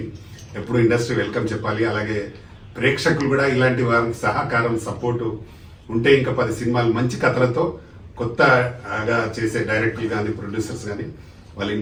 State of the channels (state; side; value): identical; both; correlation 1.00